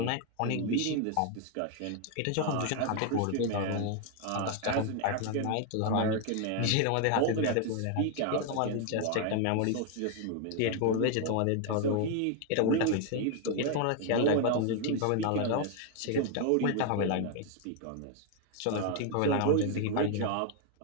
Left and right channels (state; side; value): different; both; correlation 0.01